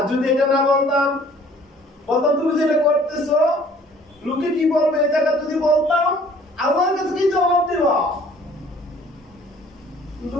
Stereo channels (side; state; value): both; normal; correlation 0.54